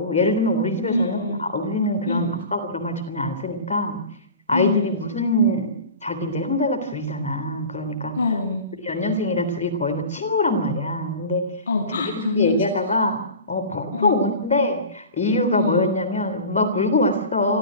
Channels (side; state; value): both; inverted; correlation -0.36